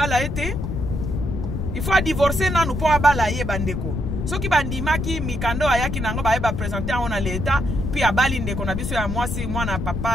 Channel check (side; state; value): left; noise; rumble, 3 dB below the sound